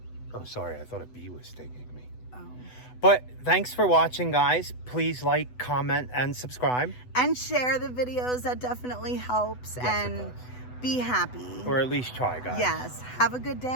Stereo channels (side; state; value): right; late; 8.0 ms